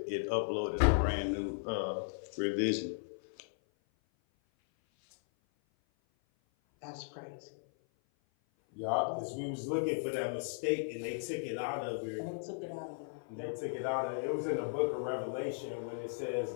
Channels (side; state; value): right; silent; 54 dB below the other